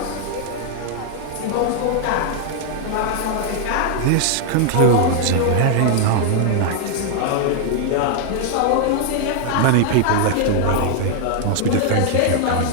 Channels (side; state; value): both; different; correlation 0.00